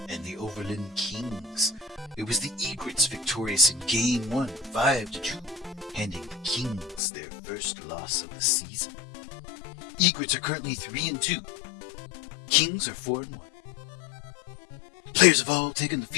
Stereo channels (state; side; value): drops out; right; at 7.0 s